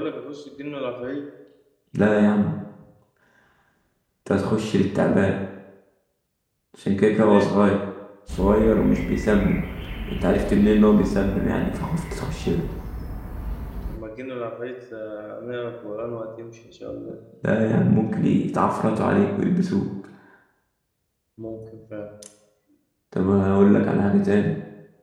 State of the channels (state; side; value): identical; both; correlation 1.00